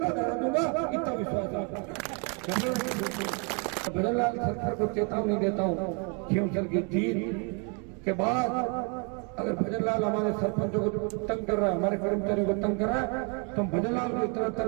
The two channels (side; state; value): left; quieter; 35.9 dB